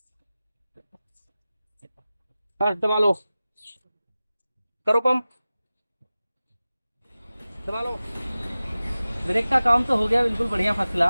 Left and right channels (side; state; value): both; inverted; correlation -0.97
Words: बस दबा लो, करो पंप, दबा लो। ब्रेक का काम तो हो गया बिल्कुल बढ़िया, फर्स्ट